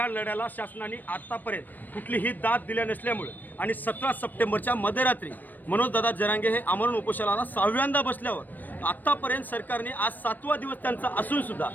लढ्याला शासनाने आतापर्यंत कुठलीही दाद दिल्या नसल्यामुळे आणि 17 सप्टेंबरच्या मध्यरात्री मनोजदादा जरांगे हे आमरण उपोषणाला 6व्यांदा बसल्यावर आत्तापर्यंत सरकारने आज 7वा दिवस त्यांचा असून सुद्धा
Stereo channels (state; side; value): late; right; 0.088 ms